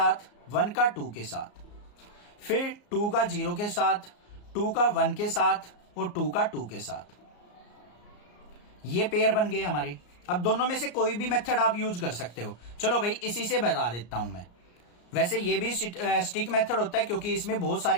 1 का 2 के साथ, फिर 2 का 0 के साथ, 2 का 1 के साथ और 2 का 2 के साथ। ये पेयर बन गए हमारे। अब दोनों में से कोई भी मेथड आप यूज कर सकते हो। चलो भाई इसी से बता देता हूं मैं। वैसे ये भी स्टिक मेथड होता है क्योंकि इसमें बहुत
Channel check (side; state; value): right; late; 34 ms